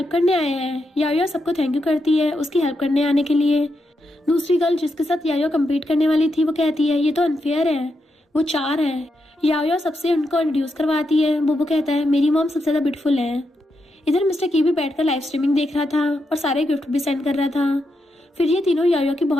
करने आए हैं। याओ सबको थैंक यू करती है उसकी हेल्प करने आने के लिए। दूसरी गर्ल जिसके साथ याओ कम्पीट करने वाली थी वो कहती है ये तो अनफेयर है, वो 4 है। याओ सबसे उनको इंट्रोड्यूस करवाती है। बोबो कहता है मेरी मॉम सबसे ज्यादा ब्यूटीफुल है। इधर मिस्टर की भी बैठकर लाइव स्ट्रीमिंग देख रहा था और सारे गिफ्ट भी सेंड कर रहा था। फिर ये तीनों याओ की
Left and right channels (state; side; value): normal; both; correlation 0.84